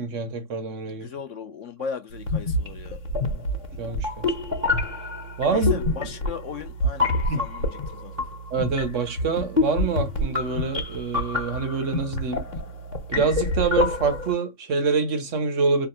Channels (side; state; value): left; late; 3.6 ms